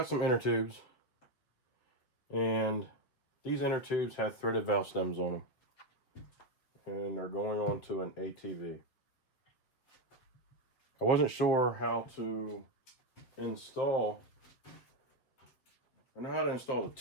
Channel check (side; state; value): right; late; 8.2 ms